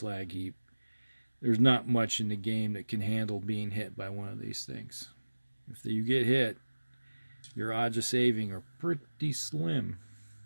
heap. There's not much in the game that can handle being hit by one of these things. If you get hit, your odds of saving are pretty slim.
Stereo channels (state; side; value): inverted; both; correlation -1.00